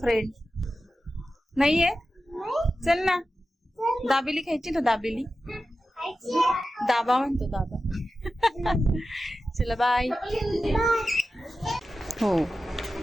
नाहीये? चल ना, दाबेली खायची ना? दाबेली दाबा म्हणतो दाबा। चला बाय। हो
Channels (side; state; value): both; normal; correlation 0.93